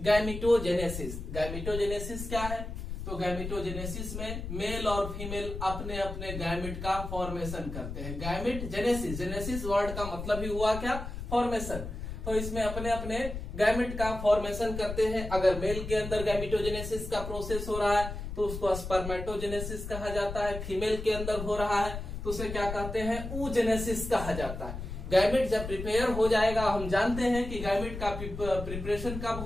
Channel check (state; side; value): noise; left; rumble, 7 dB below the sound